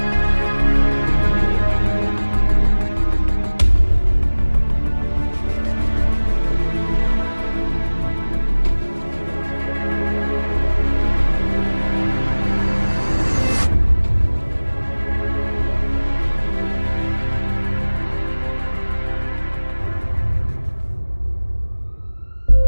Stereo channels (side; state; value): both; inverted; correlation -1.00